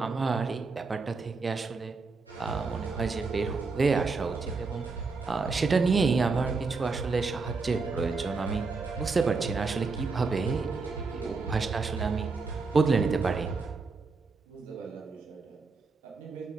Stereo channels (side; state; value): left; quieter; 4.3 dB